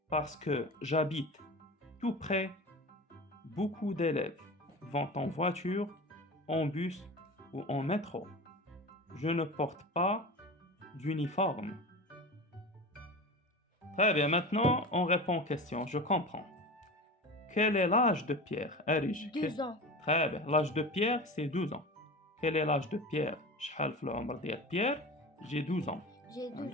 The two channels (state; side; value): normal; both; correlation 0.31